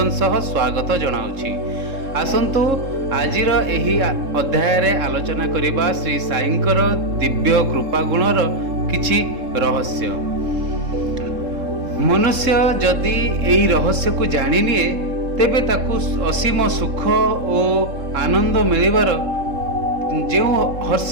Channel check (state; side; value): late; left; 3.7 ms